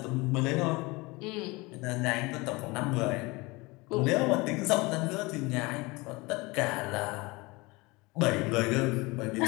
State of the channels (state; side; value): quieter; right; 24.3 dB